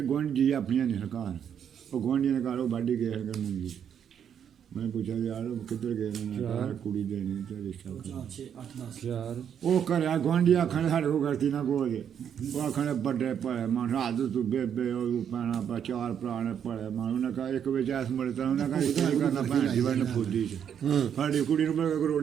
ਗੁਆਂਢੀ ਆਪਣੀਆਂ ਨੇ ਸਰਕਾਰ, ਉਹ ਗੁਆਂਢੀਆਂ ਦੇ ਘਰ ਉਹ ਵਾਢੀ ਗਏ ਕਰਨ ਮੁੰਡੀ। ਮੈਂ ਪੁੱਛਿਆ ਯਾਰ ਕਿੱਧਰ ਗਏ ਨੇ, ਯਾਰ ਕੁੜੀ ਦੇ ਨਹੀਂ ਤੇ ਰਿਸ਼ਤਾ ਯਾਰ ਉਹ ਘਰਿਆ ਗੁਆਂਢੀ ਆਖਣ ਸਾਡੇ ਕੋਲ ਗਲਤੀ ਨਾ ਕੋਈ, ਉਹ ਆਖਣ ਵੱਡੇ ਭਲੇ ਮਾਨ ਰਾਤ ਤੂੰ ਬੇਬੇ ਉਹ ਪੈਣਾ ਪਾ ਚਾਰ ਭਰਾ ਨੇ ਭਲੇ ਮਾਨ, ਉਹਨੇ ਕਹਾ ਇੱਕ ਵਿੱਚ ਐਸ ਮੁੜੇ ਤਾਂ ਉਹਨੇ ਕਹਾ ਰਿਸ਼ਤਾ ਨਹੀਂ ਕਰਨਾ ਭੈਣ ਦੀ ਵਨ ਫੁੱਦੀ ਚ ਸਾਡੀ ਕੁੜੀ ਨੂੰ ਮੈਂ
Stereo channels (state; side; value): quieter; left; 8.5 dB